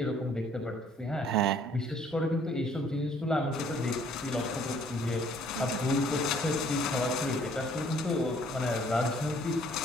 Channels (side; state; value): both; normal; correlation 0.60